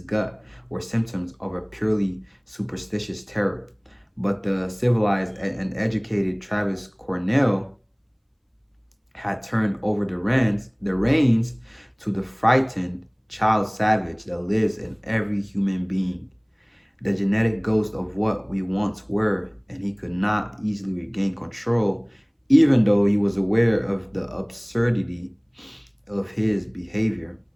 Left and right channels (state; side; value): identical; both; correlation 1.00